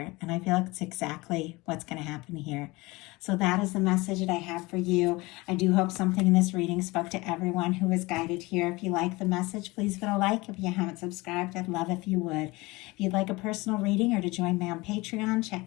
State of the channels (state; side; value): quieter; right; 22.5 dB